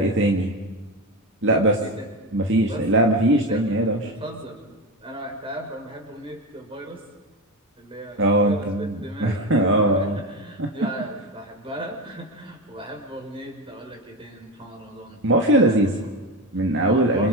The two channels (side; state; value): both; normal; correlation 0.19